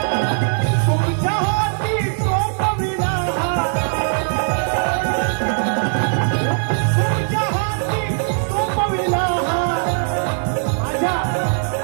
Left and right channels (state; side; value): silent; left; 57 dB below the other